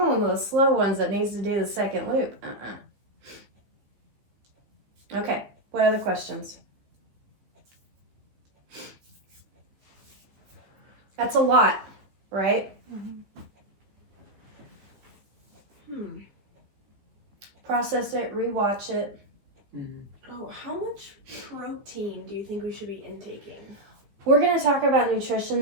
of the slow ones that needs to do the second loop. Okay, what other questions? That's a lot, right? Process it, rewatch it. Oh, how much protein do you think we should be intaking? We're going to talk about nutrition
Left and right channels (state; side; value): late; left; 15 ms